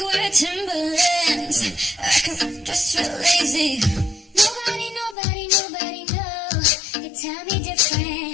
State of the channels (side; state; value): right; drops out; at 5.2 s